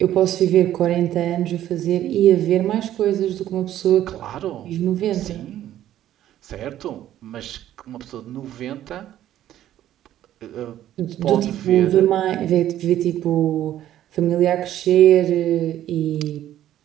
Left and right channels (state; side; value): quieter; left; 12.3 dB